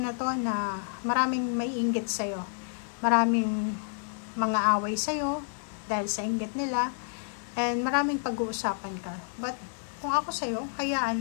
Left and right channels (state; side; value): silent; right; 58 dB below the other